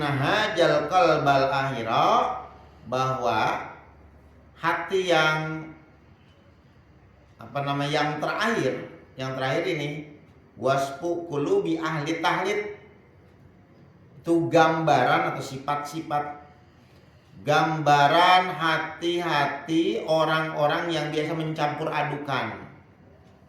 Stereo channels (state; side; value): identical; both; correlation 1.00